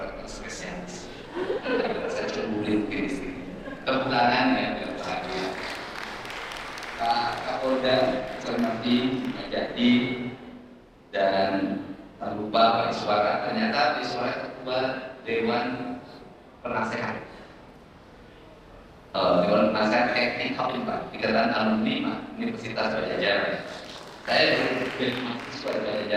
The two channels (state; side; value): identical; both; correlation 1.00